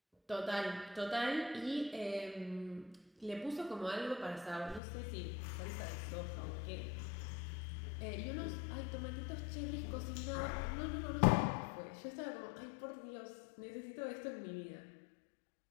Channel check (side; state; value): right; drops out; at 4.8 s